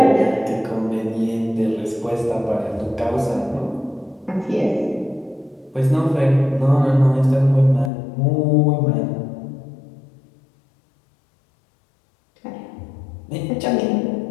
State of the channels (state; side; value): drops out; right; at 7.9 s